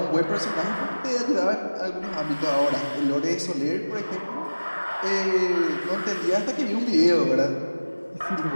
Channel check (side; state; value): both; inverted; correlation -1.00